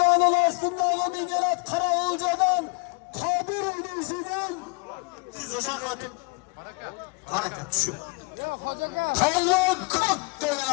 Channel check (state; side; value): quieter; right; 31.0 dB